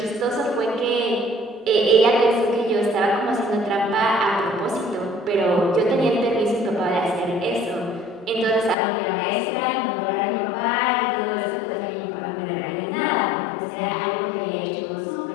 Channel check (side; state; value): right; drops out; at 8.8 s